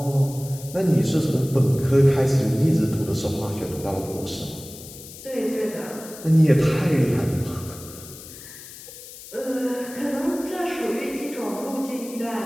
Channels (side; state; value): left; noise; hiss, 15 dB below the sound